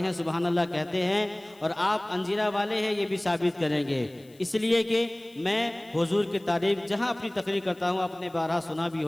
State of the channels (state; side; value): noise; left; hiss, 28 dB below the sound